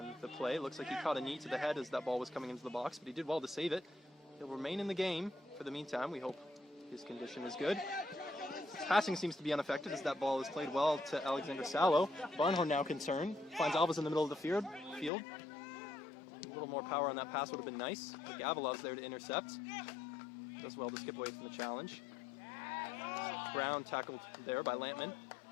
the play. Looks like he caught a knee to the head as that ball was coming into the box, but he did well to save it. He'll remain in the game for the meantime. We hope his condition is good. His passing seems to be unaffected as that ball is played well to Alexander Salo. Barnhorn now concerned. Finds Alves in the middle of the field. A little more power on that pass would have been nice. But Gavilov's there to intercept. Does well to skip away from the challenge. Brown tackled there by Lampman.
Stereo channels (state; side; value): drops out; right; at 15.1 s